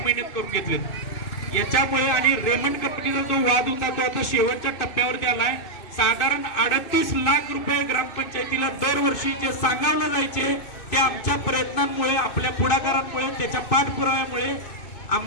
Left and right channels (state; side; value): late; right; 2.5 ms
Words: करून घेतल्यात. याच्यामुळे आणि रेमंड कंपनीचा जो वाद होता तो आता शेवटच्या टप्प्यावरती आलाय. साधारण 38 लाख रुपये ग्रामपंचायतीला दरवर्षी जे सांगावलं जायचे ते आमच्या प्रयत्नांमुळे आपल्या पुढाकारांमुळे त्याच्या पाठपुराव्यामुळे